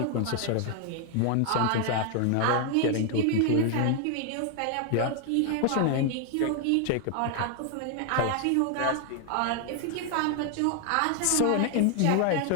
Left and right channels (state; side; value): different; both; correlation 0.00